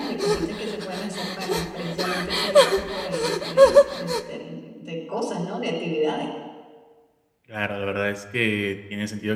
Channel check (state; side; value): identical; both; correlation 1.00